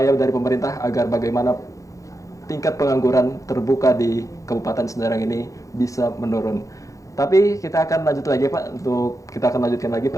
dari pemerintah agar bagaimana tingkat pengangguran terbuka di Kabupaten Serang ini bisa menurun. Tapi kita akan lanjut lagi Pak, kita akan lanjutkan lagi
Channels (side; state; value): right; late; 0.16 ms